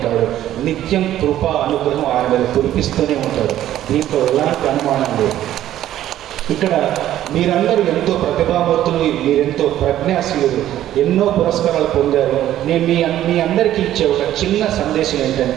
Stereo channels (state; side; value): quieter; left; 12.6 dB